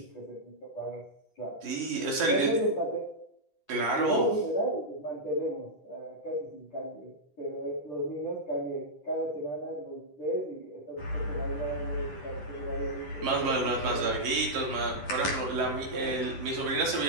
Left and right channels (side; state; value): right; late; 10 ms